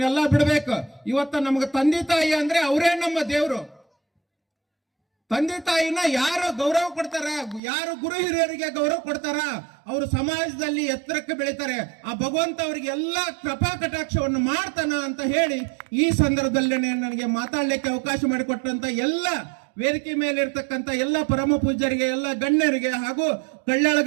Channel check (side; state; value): left; drops out; at 7.6 s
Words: ಬಿಡ್ಬೇಕು. ಇವತ್ತ ನಮ್ಗೆ ತಂದೆ ತಾಯಿ ಅಂದ್ರೆ ಅವರೇ ನಮ್ಮ ದೇವ್ರು. ತಂದೆ ತಾಯಿನ ಯಾರು ಗೌರವ ಕೊಡ್ತಾರ, ಯಾರು ಗುರು ಹಿರಿಯರಿಗೆ ಗೌರವ ಕೊಡ್ತಾರ, ಅವರು ಸಮಾಜದಲ್ಲಿ ಎತ್ತರಕ್ಕೆ ಬೆಳಿತಾರೆ. ಆ ಭಗವಂತ ಅವರಿಗೆ ಎಲ್ಲ ಕೃಪಾ ಕಟಾಕ್ಷವನ್ನು ಮಾಡ್ತಾನ ಅಂತ ಹೇಳಿ ಈ ಸಂದರ್ಭದಲ್ಲಿ ನನಗೆ ಮಾತಾಡ್ಲಿಕ್ಕೆ ಅವಕಾಶ ಮಾಡಿಕೊಟ್ಟಂತ ಎಲ್ಲ ವೇದಿಕೆ ಮೇಲೆ ಇರ್ತಕ್ಕಂಥ ಎಲ್ಲ ಪರಮ ಪೂಜ್ಯರಿಗೆ, ಎಲ್ಲ ಗಣ್ಯರಿಗೆ ಹಾಗೂ ಕಳ್ಳಾಳ